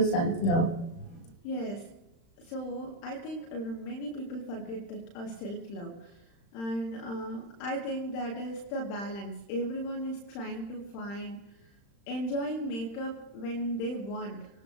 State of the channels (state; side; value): late; right; 35 ms